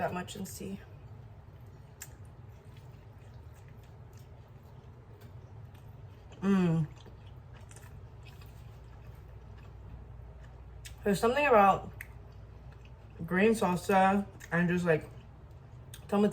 much and see. There's something about green salsa and just like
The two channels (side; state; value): both; identical; correlation 1.00